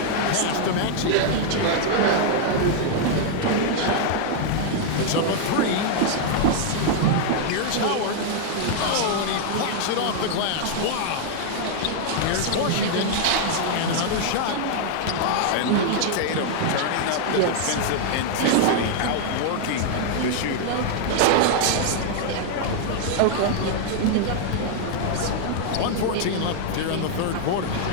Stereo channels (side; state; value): both; different; correlation 0.00